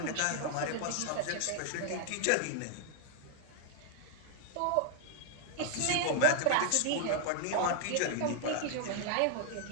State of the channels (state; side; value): different; both; correlation 0.00